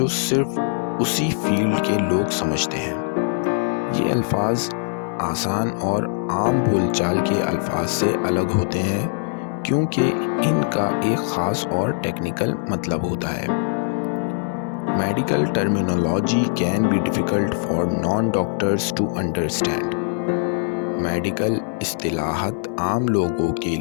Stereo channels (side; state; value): right; silent; 64 dB below the other